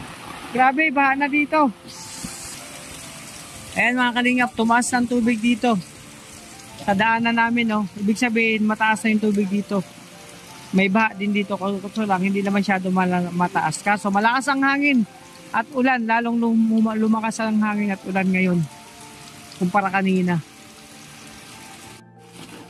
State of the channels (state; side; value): identical; both; correlation 1.00